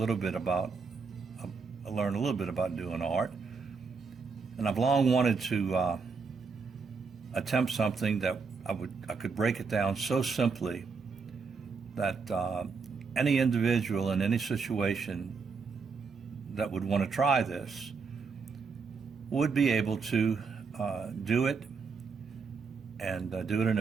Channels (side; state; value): left; quieter; 5.0 dB